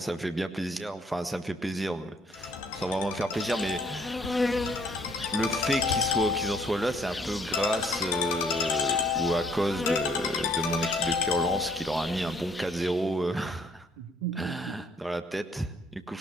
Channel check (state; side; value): normal; both; correlation 0.64